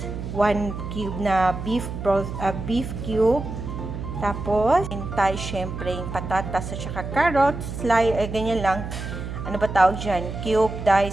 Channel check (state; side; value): noise; right; hum, 7 dB below the sound